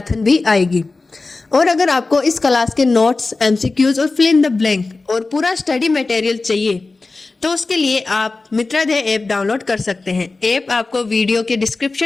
भी आएगी। और अगर आपको इस क्लास के नोट्स, एमसीक्यूज और फिल इन द ब्लैंक और पूरा स्टडी मटेरियल चाहिए तो उसके लिए आप मित्राध्यय ऐप डाउनलोड कर सकते हैं। ऐप आपको वीडियो के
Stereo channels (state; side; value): quieter; right; 3.6 dB